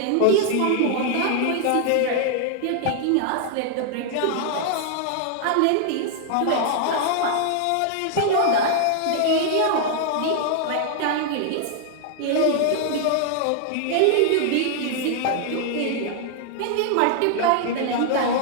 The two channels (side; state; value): both; different; correlation 0.00